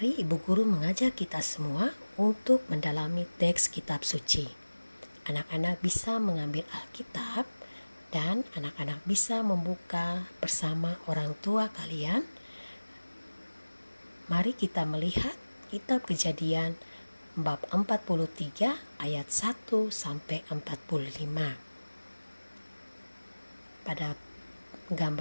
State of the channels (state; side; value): inverted; both; correlation -1.00